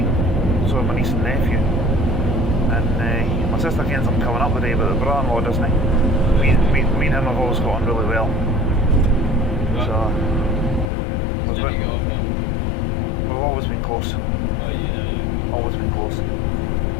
so my niece and nephew. And my sister kens I'm coming up today, but the brother-in-law doesn't. Me and him have always got on really well. So we've always been close. Always been close.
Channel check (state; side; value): drops out; right; at 10.9 s